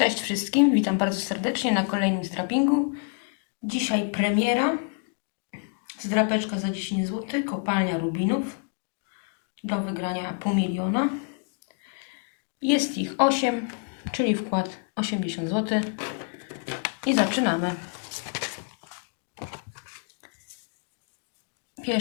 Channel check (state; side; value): quieter; right; 37.4 dB